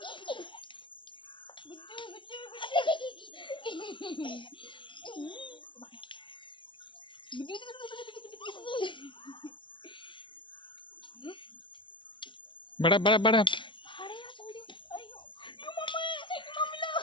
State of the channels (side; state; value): right; late; 0.24 ms